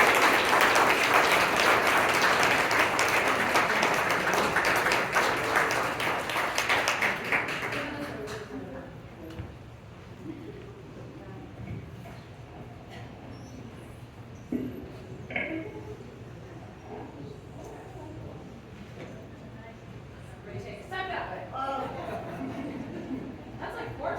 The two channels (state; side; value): identical; both; correlation 1.00